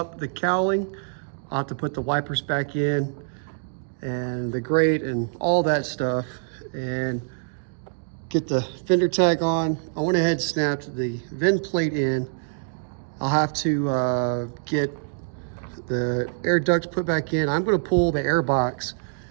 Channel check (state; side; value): silent; left; digital silence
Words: the cowling. I'll have to put the wipers back in and the grate and all that stuff and get the fender tag on. I went ahead and snapped the VIN plate in. I'll have to get the air duct put back in. I'm gonna pull the air box